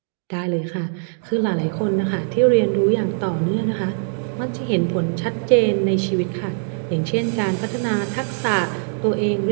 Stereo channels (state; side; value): silent; left; 63 dB below the other